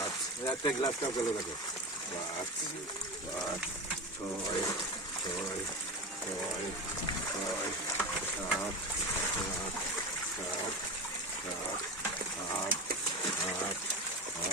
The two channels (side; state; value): both; normal; correlation 0.23